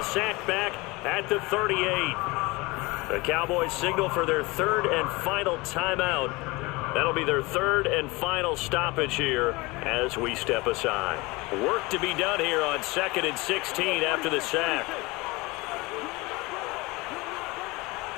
Sacked back at the 38. The Cowboys signal for their third and final timeout. That'll be their third and final stoppage here as we step aside. Work to be done here on 2nd and 16 after the sack.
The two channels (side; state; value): right; quieter; 23.5 dB